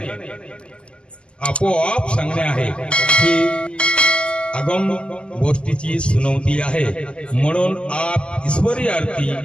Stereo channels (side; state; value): right; late; 0.051 ms